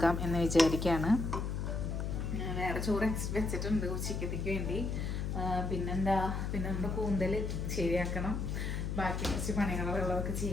എന്ന് വിചാരിക്കുകയാണ്. വേറെ ചോറ് വെച്ചിട്ടുണ്ട് ഉച്ചയ്ക്കത്തേക്ക് വേണ്ടി. പിന്നെ നമ്മുടെ കൂന്തൽ ശരിയാക്കണം. ബാക്കി കുറച്ച് പണികളുള്ളതൊക്കെ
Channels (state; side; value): noise; left; hum, 2 dB below the sound